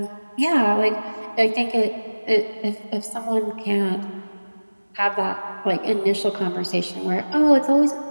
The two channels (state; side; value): inverted; both; correlation -1.00